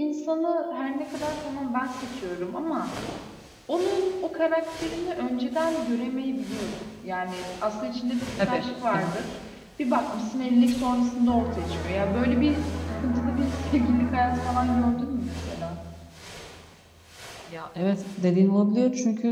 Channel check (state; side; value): identical; both; correlation 1.00